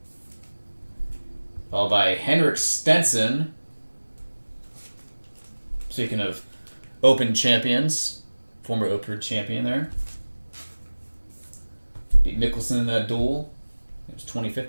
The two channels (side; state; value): both; inverted; correlation -1.00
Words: Followed by Henrik Stenson. Speaking of Open champions, former Open champion there. Beat Mickelson in that duel. It was